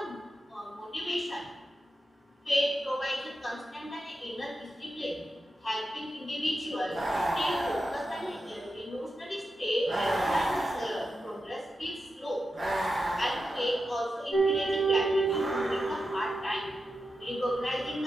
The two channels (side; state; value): both; normal; correlation 0.89